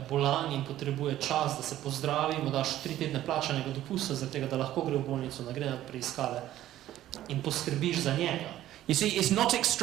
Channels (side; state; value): left; quieter; 13.4 dB